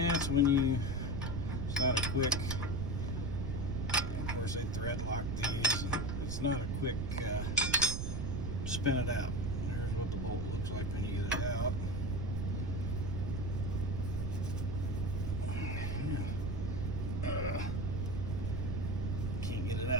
when you, it's not a quick, of course they thread lock these, and it's not a quick spin it out. Here's what the bolt looks like when you get it out. Can't get it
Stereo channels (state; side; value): noise; right; rumble, 2 dB below the sound